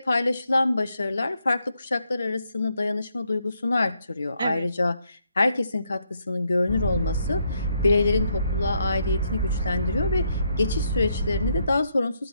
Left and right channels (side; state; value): both; inverted; correlation -0.76